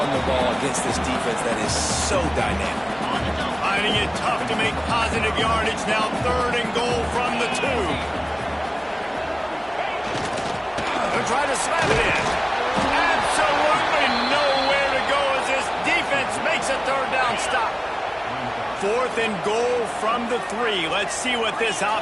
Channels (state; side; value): identical; both; correlation 1.00